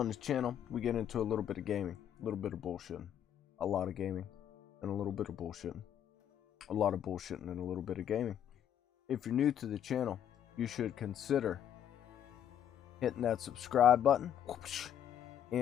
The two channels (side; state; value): right; quieter; 9.8 dB